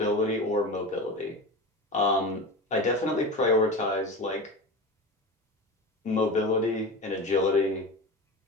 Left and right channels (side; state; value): both; normal; correlation 0.28